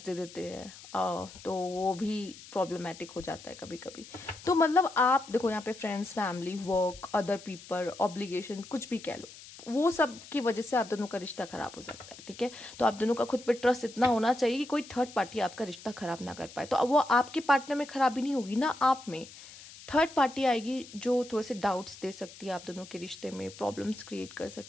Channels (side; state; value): left; noise; hiss, 17 dB below the sound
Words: देते हैं, तो वो भी प्रॉब्लमेटिक हो जाता है कभी कभी। तो मतलब आप देखो यहाँ पे friends, family, work, other people, obligation, कुछ भी कह लो, वो सब की वजह से आप दोनों का रिश्ता खराब हो सकता है। ठीक है, तो आप दोनों का खुद पे ट्रस्ट इतना होना चाहिए कि कोई थर्ड पार्टी आपका रिश्ता खराब ना कर पाए। तो अब वो आपके पार्टनर में खराबी नहीं होगी ना, आप में थर्ड पार्टी आएगी जो थोड़े से डाउट्स दे सकती है आप दोनों के रिश्ते में, प्रॉब्लम्स क्रिएट कर